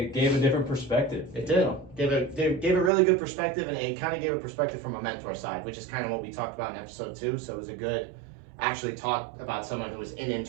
gave a different perspective. It did. Gave a really good perspective, and it kind of gave a perspective from a mentor side, which is kind of what we talked about in episode 2. So it was a good, actually talk about someone who was in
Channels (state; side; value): drops out; left; at 2.9 s